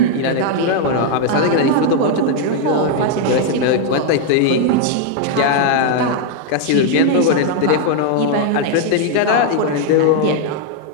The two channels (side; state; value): both; different; correlation 0.00